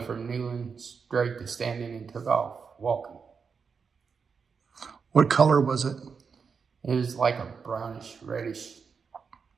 from kneeling straight to standing and took off walking. What color was it? It was like a brownish, reddish.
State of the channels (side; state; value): left; quieter; 5.7 dB